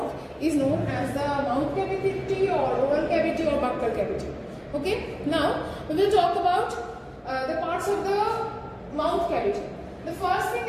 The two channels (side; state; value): both; identical; correlation 1.00